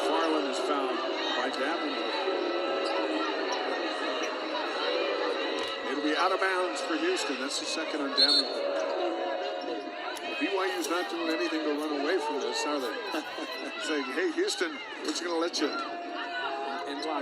is fouled by Davenport. It'll be out of bounds for Houston. That's the second on Davenport. BYU's not doing anything to run away from this, are they? Saying, hey, Houston, we're just going to let you. And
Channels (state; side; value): identical; both; correlation 1.00